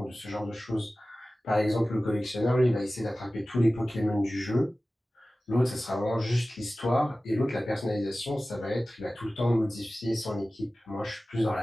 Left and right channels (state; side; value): normal; both; correlation 0.96